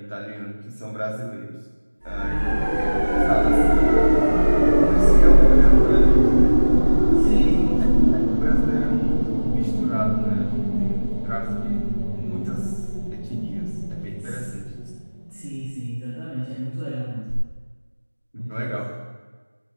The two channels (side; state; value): both; inverted; correlation -1.00